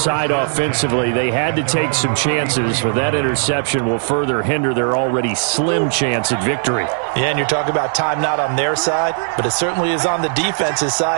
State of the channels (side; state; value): left; silent; digital silence